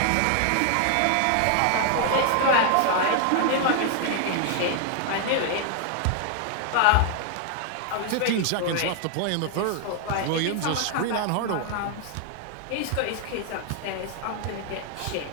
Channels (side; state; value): both; different; correlation 0.00